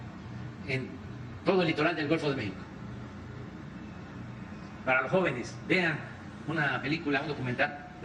en todo el litoral del Golfo de México. Para los jóvenes, vean una película, un documental,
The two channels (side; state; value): both; identical; correlation 1.00